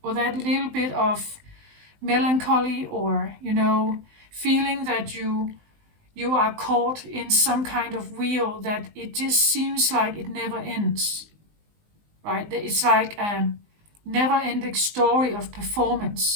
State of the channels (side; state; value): left; late; 19 ms